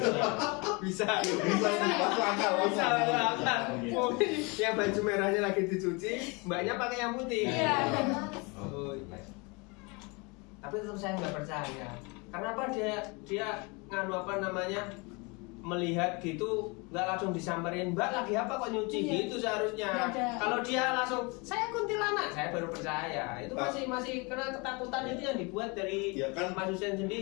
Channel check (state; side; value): quieter; right; 28.9 dB